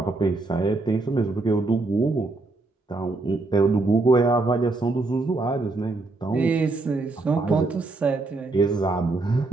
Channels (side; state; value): left; quieter; 3.3 dB